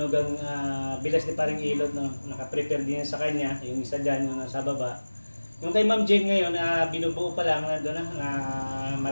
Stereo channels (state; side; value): inverted; both; correlation -1.00